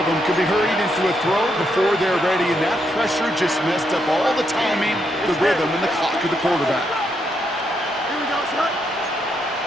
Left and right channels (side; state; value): both; normal; correlation 0.79